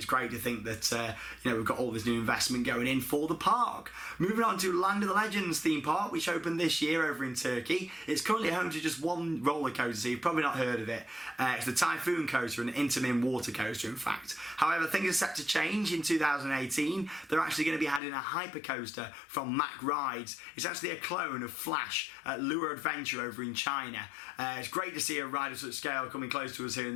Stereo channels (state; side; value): drops out; right; at 18.0 s